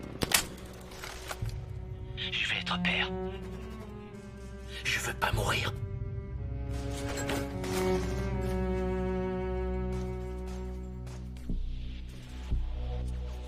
Je vais être père. Je veux pas mourir.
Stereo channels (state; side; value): identical; both; correlation 1.00